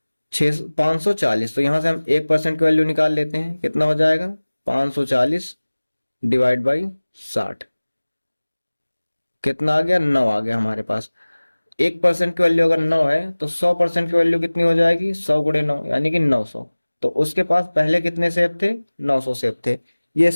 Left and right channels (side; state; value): both; inverted; correlation -1.00